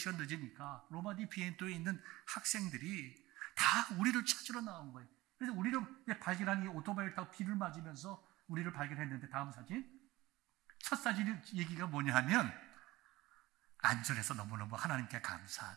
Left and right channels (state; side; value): quieter; left; 18.7 dB